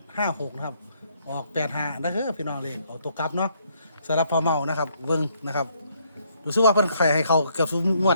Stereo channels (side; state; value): both; inverted; correlation -0.71